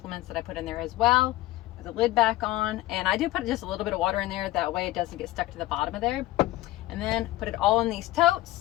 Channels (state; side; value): quieter; right; 17.1 dB